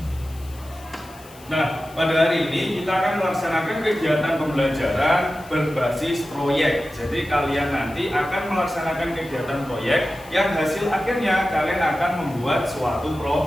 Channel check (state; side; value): noise; left; hiss, 23 dB below the sound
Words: Nah, pada hari ini kita akan melaksanakan kegiatan pembelajaran berbasis proyek. Jadi kalian nanti akan melaksanakan kegiatan proyek yang hasil akhirnya kalian akan membuat suatu